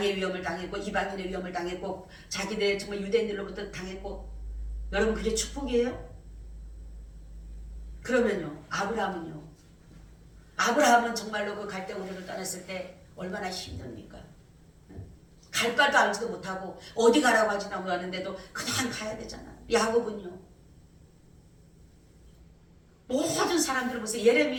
위험을 당했고 이방인의 위험을 당했고 자기들 정말 유대인들로부터 당했고. 여러분, 그게 축복이에요? 그러면요, 아브라함은요? 아브라함은 정말로 그 갈대 우르를 떠났을 때 얼마나 힘듭니까? 갈 바도 알지도 못하고 어디 가라고 하지도 않았는데도 그냥 가야 되잖아. 야곱은요? 모든 사람들을 보세요.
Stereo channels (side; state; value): both; identical; correlation 1.00